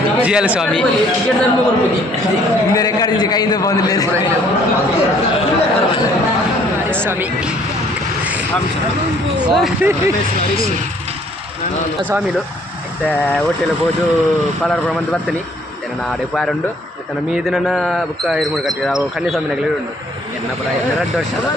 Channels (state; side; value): normal; both; correlation 0.61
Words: ಹಿಂದೆ ರೆಕಾರ್ಡ್ ಕೈಯಿಂದ ಬಂದಿಲ್ಲ ಸ್ವಾಮಿ ಸ್ವಾಮಿಲು ಮತ್ತೆ ಹೋಟೆಲ್ ಹೋದು ಪಲಾರ್ ಬಂದು ಬರ್ತೀನಿ ನನ್ನ ಆಡೆ ಪಾರುಂಡು ಮತ್ತೆ ನಮ್ಮ ಮೀದು ನನ್ನ ಬುಕ್ಕ ಇರ್ಮೂಡು ಕಟ್ಟಿದ ಅವು ಕನ್ಯಾಸ್ವಾಮಿನಾಗಲಿ ಉಂಟು ಎನ್ನ ಪರ 2 ವರ್ಷ